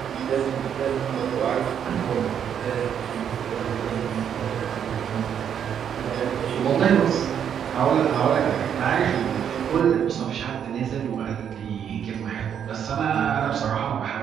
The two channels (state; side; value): quieter; left; 8.6 dB